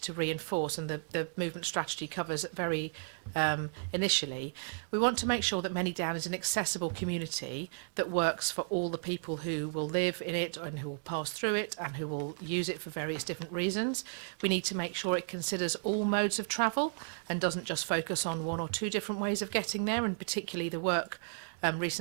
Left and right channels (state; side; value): silent; left; digital silence